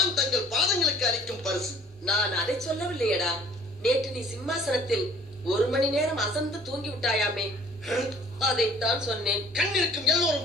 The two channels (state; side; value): normal; both; correlation 0.54